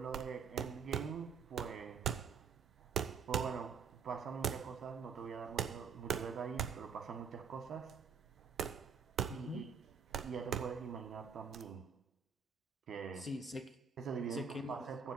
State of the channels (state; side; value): quieter; left; 6.1 dB